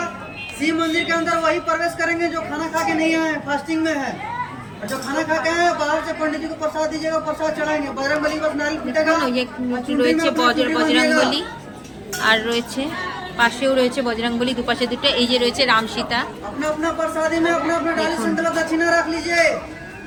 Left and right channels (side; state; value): both; identical; correlation 1.00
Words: शिव मंदिर के अंदर वही प्रवेश करेंगे जो खाना खा के नहीं आए, फास्टिंग में है। और जो खाना खा के आए बाहर से पंडित जी को प्रसाद दीजिएगा, प्रसाद चढ़ाएंगे। बजरंगबली बस नारियल फूटेगा। ये রয়েছে বজরংবলী। আর রয়েছে পাশেও রয়েছে বজরংবলী, দুপাশে দুটো। এই যে রয়েছে রাম সীতা। अपना अपना प्रसादी में अपना अपना डाली संकल्प दक्षिणा रख लीजिए।